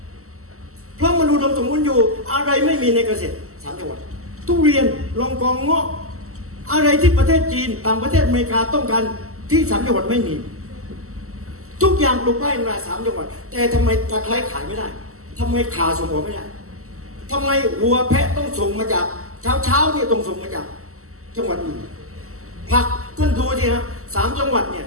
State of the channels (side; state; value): left; late; 0.63 ms